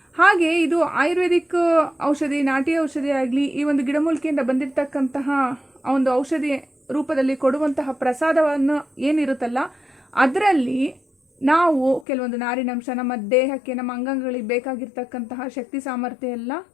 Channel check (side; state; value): right; drops out; at 12.1 s